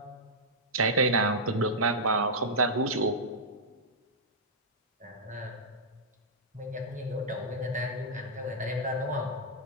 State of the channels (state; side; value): normal; both; correlation -0.10